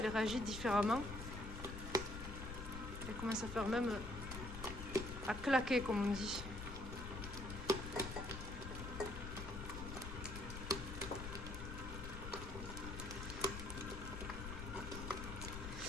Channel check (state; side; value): noise; left; rumble, 7 dB below the sound